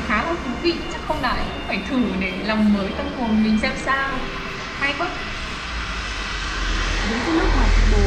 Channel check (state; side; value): identical; both; correlation 1.00